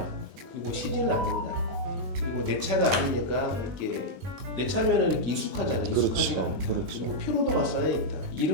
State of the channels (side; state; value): left; late; 21 ms